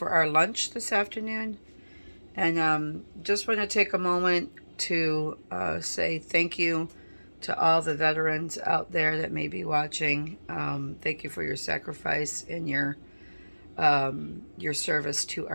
our lunch this afternoon. And just want to take a moment to say thank you to all the veterans out there that may be watching. Thank you for your sacrifice and your service to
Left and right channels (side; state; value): both; inverted; correlation -1.00